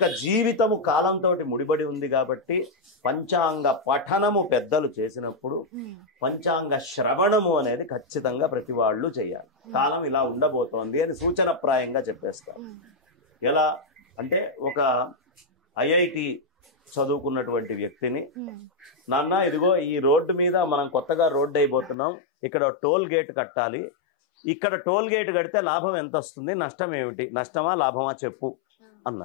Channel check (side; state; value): right; drops out; at 22.0 s